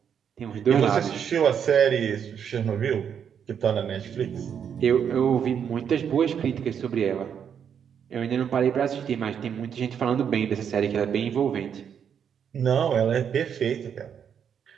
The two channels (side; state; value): left; quieter; 7.9 dB